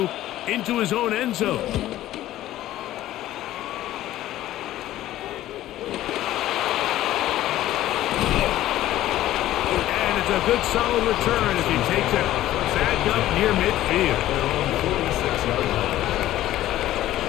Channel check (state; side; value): quieter; right; 14.2 dB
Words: into his own end zone. And it's a good solid return as he takes it back up near midfield.